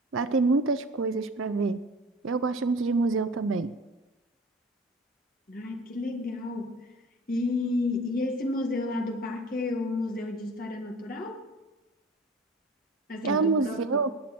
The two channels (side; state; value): both; normal; correlation 0.40